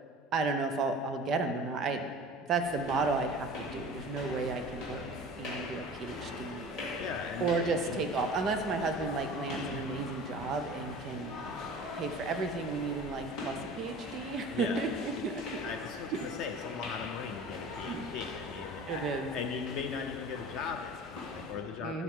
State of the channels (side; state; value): both; normal; correlation 0.40